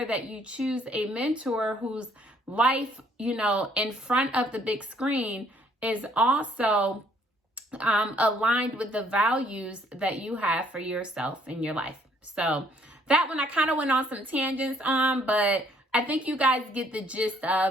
that you choose a mentor whose life, in front of the big screen is also aligned with the values that you have for yourself in your life. So that one I kind of went on some tangents on, but I think you guys get the gist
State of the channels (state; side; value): normal; both; correlation 0.64